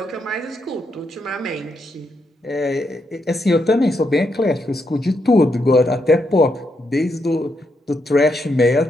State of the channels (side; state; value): both; normal; correlation 0.81